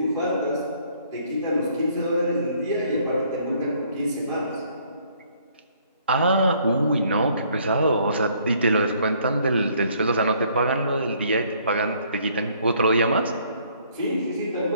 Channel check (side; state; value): both; inverted; correlation -0.63